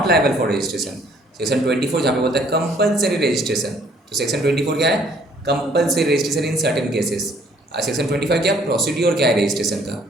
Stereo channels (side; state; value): both; normal; correlation 0.61